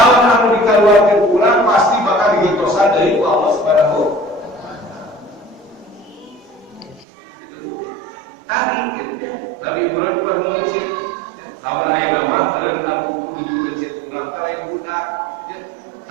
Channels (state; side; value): drops out; left; at 7.1 s